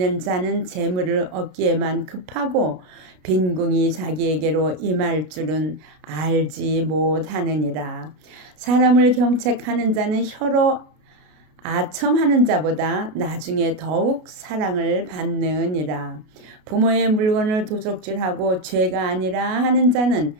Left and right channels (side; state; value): left; late; 33 ms